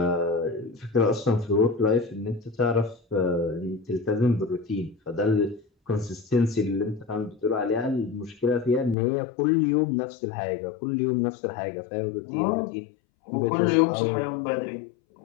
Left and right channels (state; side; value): drops out; right; at 9.0 s